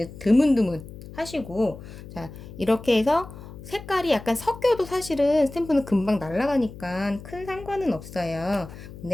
드문드문 하시고, 자, 이렇게 해서 색깔이 약간 섞여도 사실은 스탬프는 금방 날아가니까 큰 상관은 없어요.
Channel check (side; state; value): left; noise; hum, 15 dB below the sound